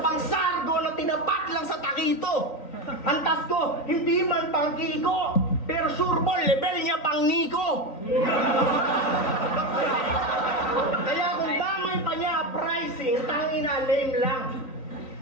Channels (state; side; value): late; right; 3.9 ms